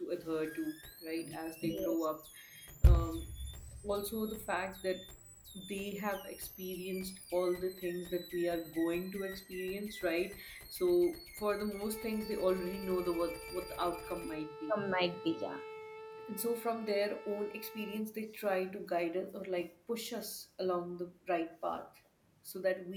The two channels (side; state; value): both; identical; correlation 1.00